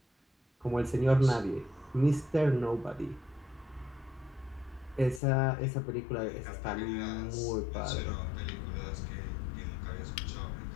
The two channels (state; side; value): drops out; right; at 5.2 s